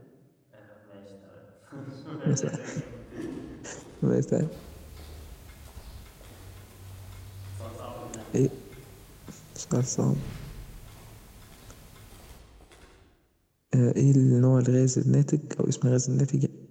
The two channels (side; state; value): both; identical; correlation 1.00